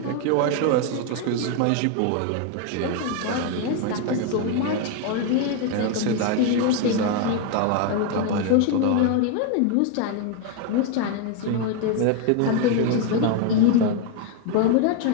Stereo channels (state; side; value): different; both; correlation 0.01